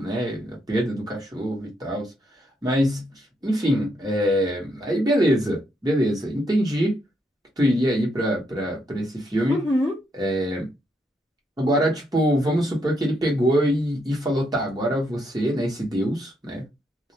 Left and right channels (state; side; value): normal; both; correlation 0.77